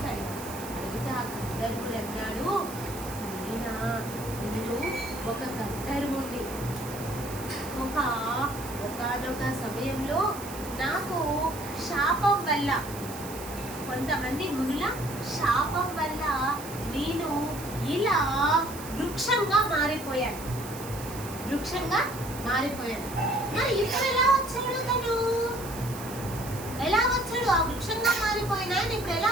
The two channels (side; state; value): right; noise; hiss, 13 dB below the sound